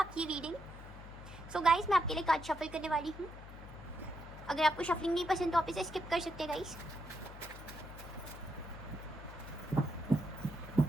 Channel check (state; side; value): noise; left; hum, 14 dB below the sound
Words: रीडिंग। सो गाइस, मैं आपके लिए कार्ड शफल करने वाली हूँ। अगर आपको शफलिंग नहीं पसंद तो आप इसे स्किप कर सकते हैं guys.